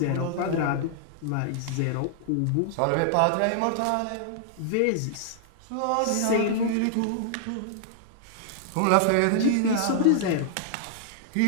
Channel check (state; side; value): different; both; correlation -0.01